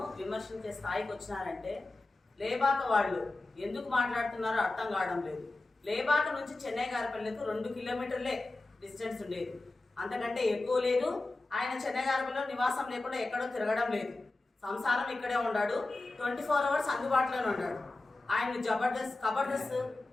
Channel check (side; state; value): right; quieter; 3.0 dB